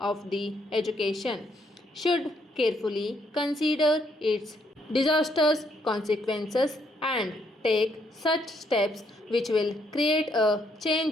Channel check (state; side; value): normal; both; correlation 0.72